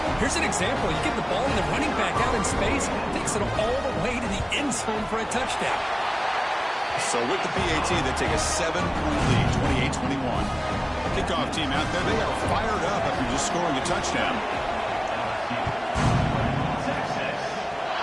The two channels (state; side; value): identical; both; correlation 1.00